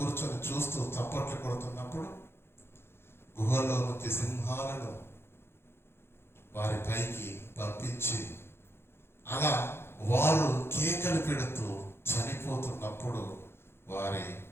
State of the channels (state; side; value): late; right; 0.12 ms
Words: చూస్తూ చప్పట్లు కొడుతున్నప్పుడు గుహలో నుంచి సింహాలను వారి పైకి పంపించి అలా వారు కేకలు పెడుతూ చనిపోతున్నప్పుడు వారి